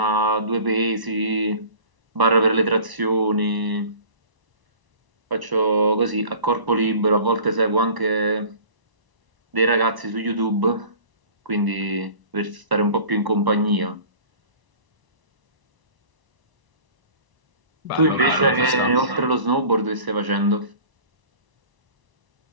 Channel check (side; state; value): left; late; 1.0 ms